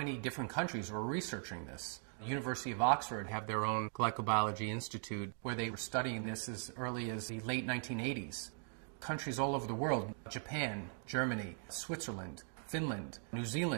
different countries were researching this. The University of Oxford have their own glycobiology institute where they were studying this as early as the late 1980s. Countries all over the world, Japan, Germany, Switzerland, Finland, New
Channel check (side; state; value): left; silent; 51 dB below the other